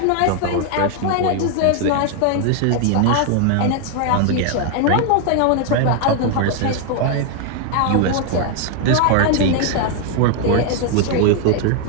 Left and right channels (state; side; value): different; both; correlation 0.00